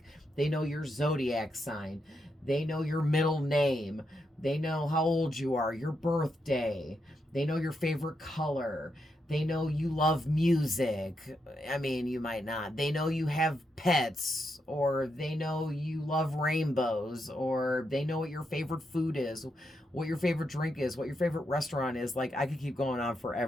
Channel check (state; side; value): normal; both; correlation 0.82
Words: they know your zodiac sign. They know your middle name. They know how old you are, your birthday. They know your favorite color. They know you love music. I mean, you might not. They know you have pets, or they know you love rainbows, or they know what your favorite food is, what your favorite drink is, what your favorite restaurant is. Like, I could keep going on